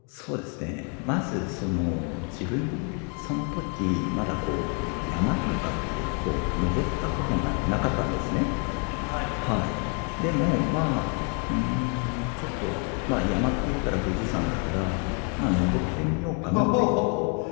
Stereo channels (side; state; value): right; quieter; 38.2 dB